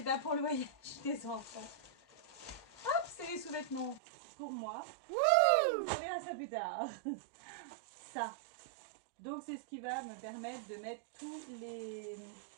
pas pour le voyage des enfants. Hop, c'est les sous-vêtements pour moi. On verra ça plus tard. Ça. Donc c'est ce qui va me permettre de mettre tous les...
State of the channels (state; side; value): drops out; left; at 4.0 s